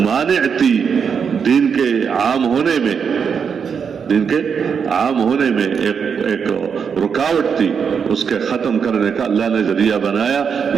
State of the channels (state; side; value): quieter; left; 6.6 dB